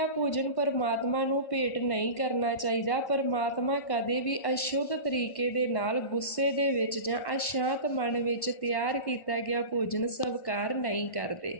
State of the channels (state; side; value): late; right; 1.1 ms